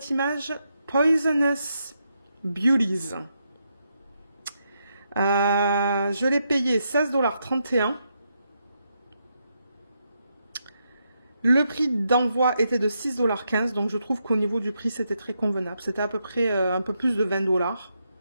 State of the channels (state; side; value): inverted; both; correlation -0.82